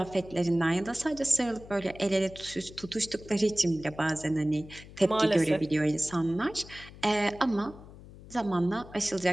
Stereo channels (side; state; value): left; noise; hum, 18 dB below the sound